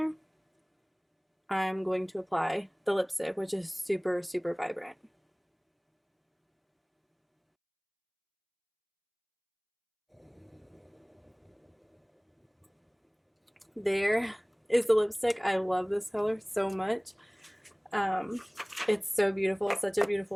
I'm going to apply the lipstick, which is super, super vibrant. There is the lipstick. I love this color so much. It's so beautiful. It's such a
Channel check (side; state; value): both; identical; correlation 1.00